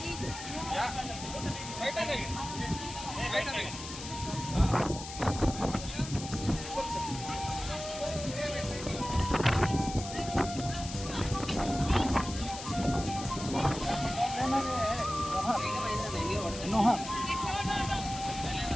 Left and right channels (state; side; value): noise; left; hiss, 10 dB below the sound